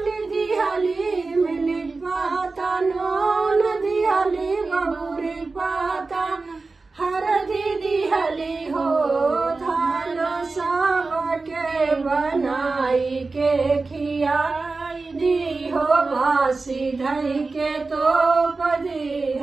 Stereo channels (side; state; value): left; quieter; 3.8 dB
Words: दियाली मिली पाता नून दियाली बबूरी पाता हरदी दियाली हो धान सब के बनाई के खियाई दी हो बासी धई के तो